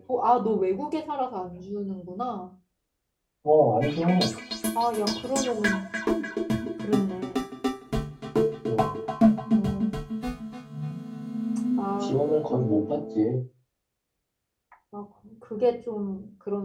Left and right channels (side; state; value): both; identical; correlation 1.00